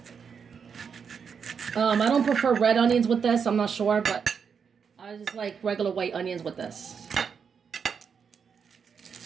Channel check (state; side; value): quieter; left; 6.5 dB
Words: I don't prefer red onions with this, I'm not sure, but I just like regular white onions with this.